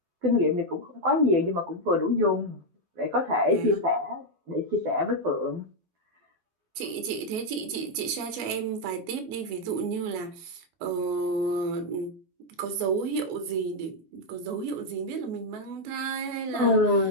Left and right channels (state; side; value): late; left; 12 ms